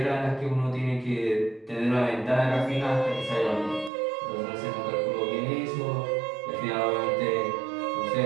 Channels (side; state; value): left; drops out; at 3.9 s